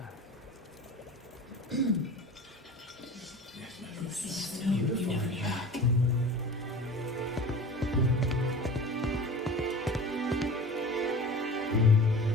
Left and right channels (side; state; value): both; normal; correlation 0.37